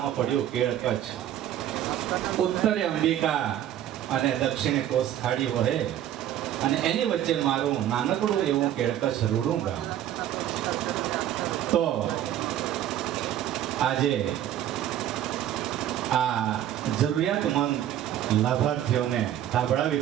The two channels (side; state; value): left; quieter; 11.6 dB